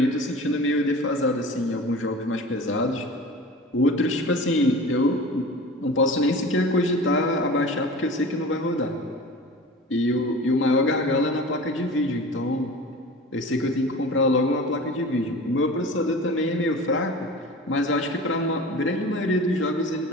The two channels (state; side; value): normal; both; correlation 0.37